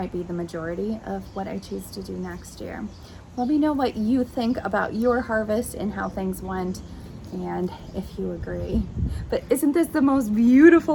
be the majority of what I choose to do next year. Let me know what you think about your harvest and how things went, and if you agree. But isn't this the most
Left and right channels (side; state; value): both; identical; correlation 1.00